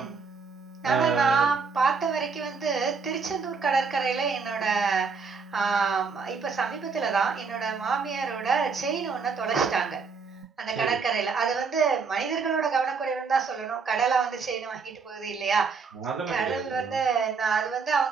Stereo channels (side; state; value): left; quieter; 5.1 dB